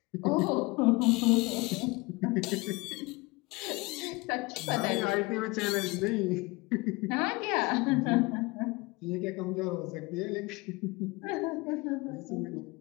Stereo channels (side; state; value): right; quieter; 24.3 dB